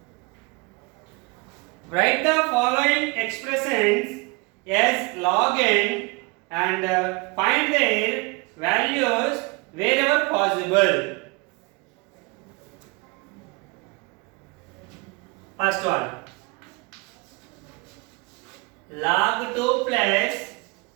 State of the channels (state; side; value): quieter; left; 27.6 dB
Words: Write the following expressions as log n and find their values wherever possible. First one, log 2 plus